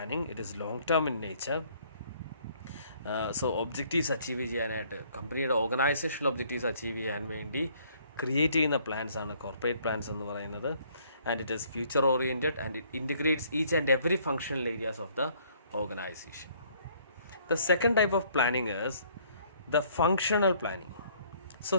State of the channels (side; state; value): both; inverted; correlation -0.62